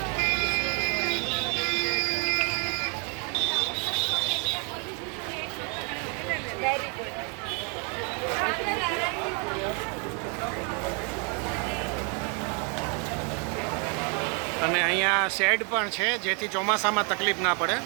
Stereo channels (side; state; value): left; quieter; 36.3 dB